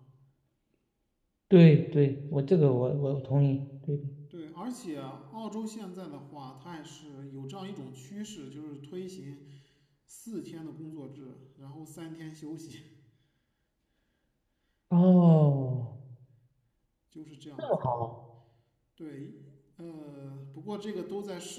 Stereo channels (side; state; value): both; identical; correlation 1.00